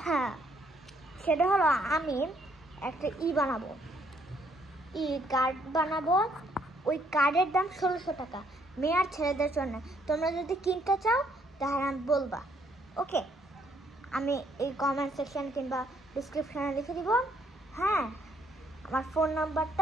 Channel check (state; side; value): normal; both; correlation 0.68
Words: সেটা হলো আমি একটা বানাবো, কার্ড বানাবো। ওই কার্ডের দাম 1600 টাকা, মেয়ে আর ছেলেদের জন্য। তোমরা যদি কিনতে চাও তাহলে আমি বলবা, ওকে? আমি এই কমেন্ট সেকশন কিংবা ডিসক্রিপশানে লিখে দিব, হ্যাঁ, আমার ফোন